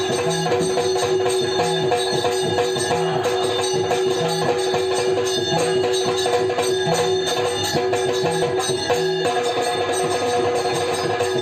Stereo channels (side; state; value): both; identical; correlation 1.00